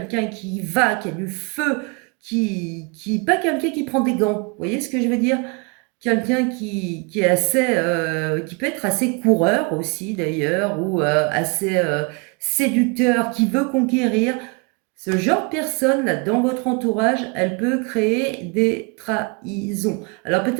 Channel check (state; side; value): quieter; left; 30.7 dB